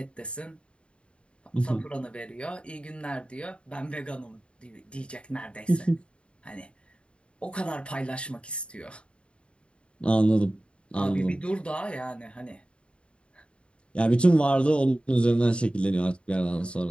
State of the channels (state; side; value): late; right; 0.057 ms